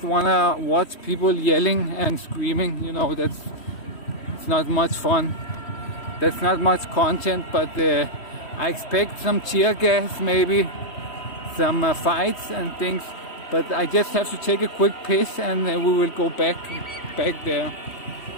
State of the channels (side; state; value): right; late; 3.1 ms